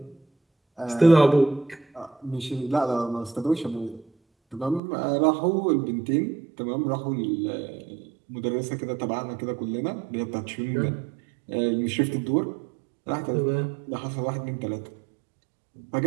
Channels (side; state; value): left; drops out; at 4.8 s